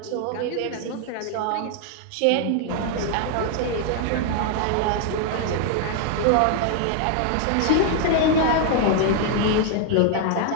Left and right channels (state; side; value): different; both; correlation 0.00